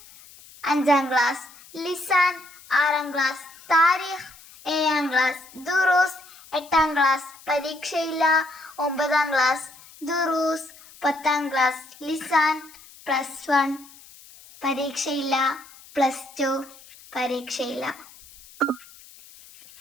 5-ാം ക്ലാസ് ലിസാൻ, 6-ാം ക്ലാസ് താരീഖ്, 7-ാം ക്ലാസ് ദുറൂസ്, 8-ാം ക്ലാസ് പരീക്ഷയില്ല, 9-ാം ക്ലാസ് ദുറൂസ്, 10-ാം ക്ലാസ് ലിസാൻ, +1 പരീക്ഷയില്ല, +2 പരീക്ഷയില്ല.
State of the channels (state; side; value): noise; left; hiss, 22 dB below the sound